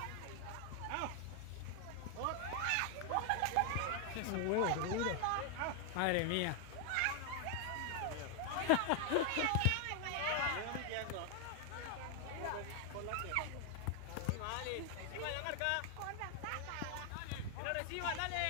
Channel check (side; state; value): both; different; correlation 0.00